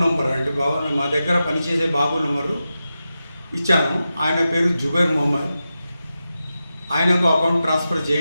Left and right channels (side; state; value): both; inverted; correlation -0.91